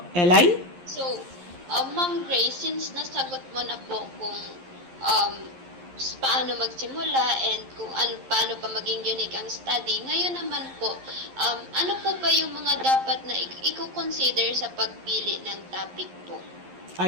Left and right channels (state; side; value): late; left; 11 ms